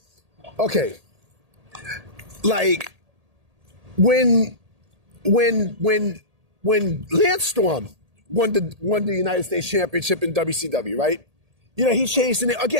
okay. Like, when Lance Storm won the United States Championship in WCW, right? He changed it.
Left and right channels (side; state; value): left; late; 1.8 ms